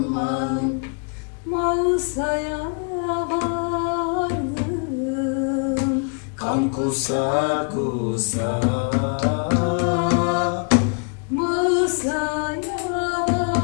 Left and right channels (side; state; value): right; quieter; 39.6 dB